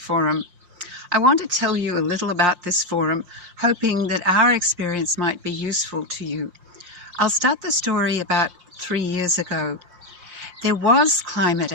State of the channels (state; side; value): late; left; 5.7 ms